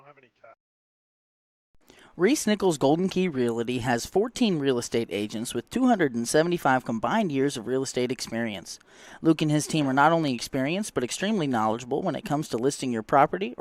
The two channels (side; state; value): both; identical; correlation 1.00